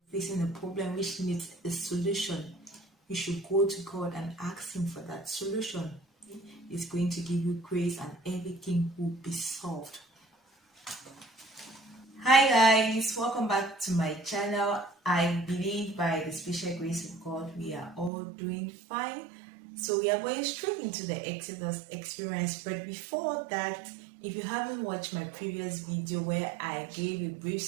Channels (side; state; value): left; drops out; at 18.1 s